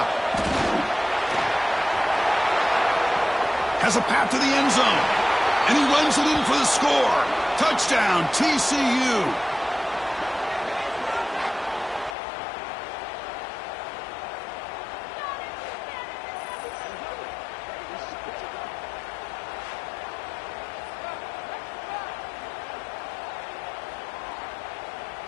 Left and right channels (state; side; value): drops out; right; at 12.2 s